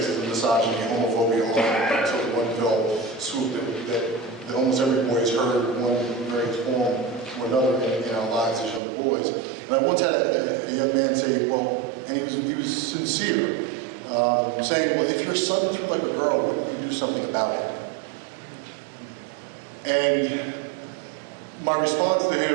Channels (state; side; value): drops out; left; at 8.8 s